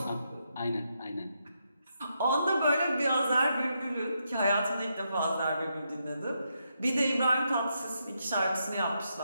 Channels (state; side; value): inverted; both; correlation -0.81